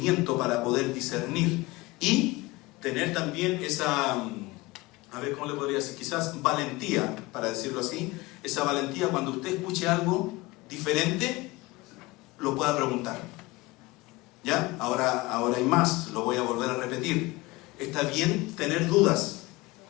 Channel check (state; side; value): quieter; right; 21.6 dB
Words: para poder discernir y tener también esa, a ver cómo le podría decir, quizás valentía, para decirlo así, esa valentía cuando usted escuche algo diferente, lo pueda preguntar. ¿Ya? Ahora hay más, lo voy a volver a repetir. Está bien tener dudas.